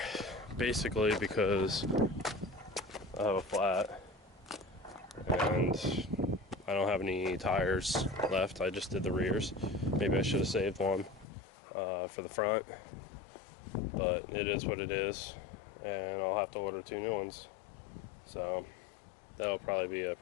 basically because I have a flat and I don't have any tires left. I just did the rears. Maybe I should have saved one for the front, but it is what it is, and I'll have to order 2 new ones. So that'll probably be a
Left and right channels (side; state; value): right; drops out; at 11.2 s